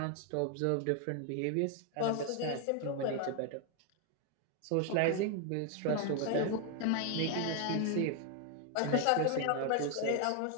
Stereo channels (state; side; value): different; both; correlation 0.01